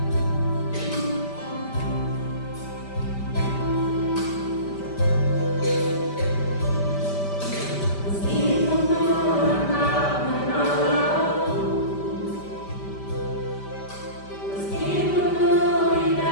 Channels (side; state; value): right; late; 5.1 ms